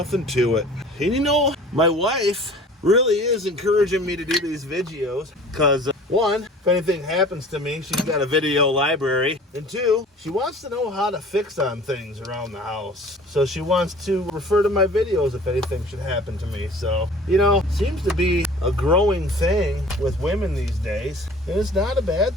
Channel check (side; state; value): both; normal; correlation 0.46